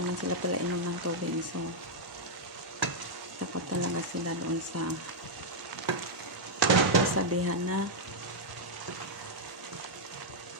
sila pala inom ng tubig, so dapat talaga sila doon sa kasabihan na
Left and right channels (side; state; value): both; normal; correlation -0.04